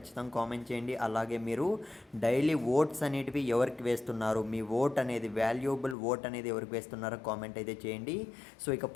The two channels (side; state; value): right; drops out; at 6.0 s